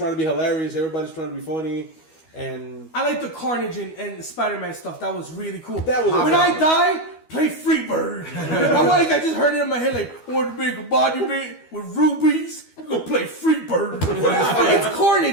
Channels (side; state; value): right; late; 12 ms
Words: to be hilarious. Everybody's trying to be funny. And I like the Carnage and Spider-Man stuff. That was really cool. That was when awesome. I die, play Freebird. I just heard it in my head like, I want to make a body made with rubies We're gonna play Freebird. It's